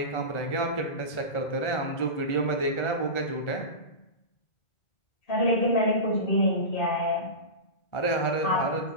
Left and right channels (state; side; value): late; right; 1.4 ms